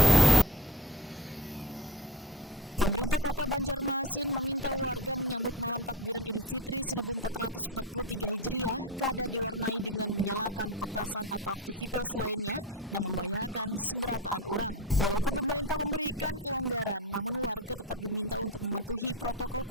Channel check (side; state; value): both; normal; correlation 0.28